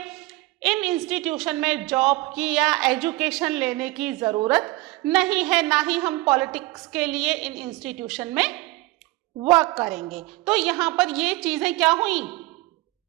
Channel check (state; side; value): quieter; left; 20.7 dB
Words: इन इंस्टीट्यूशन में जॉब की या एजुकेशन लेने की ज़रूरत नहीं है, ना ही हम पॉलिटिक्स के लिए इन इंस्टीट्यूशन में वर्क करेंगे। तो यहाँ पर ये चीज़ें क्या हुई,